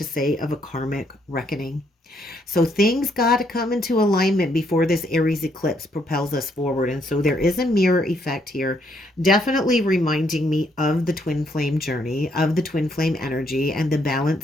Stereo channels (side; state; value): both; normal; correlation 0.72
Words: say, of a karmic reckoning. So things got to come into alignment before this Aries eclipse propels us forward. And so there is a mirror effect here, definitely reminding me of the twin flame journey, of the twin flame energy, and the